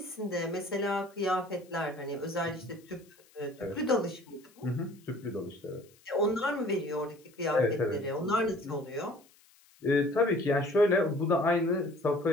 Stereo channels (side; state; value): left; noise; hiss, 29 dB below the sound